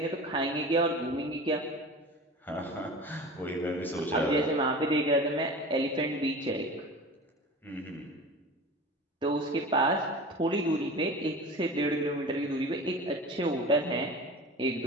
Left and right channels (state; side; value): normal; both; correlation 0.35